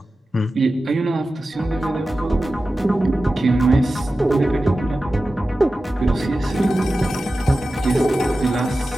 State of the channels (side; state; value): both; normal; correlation 0.94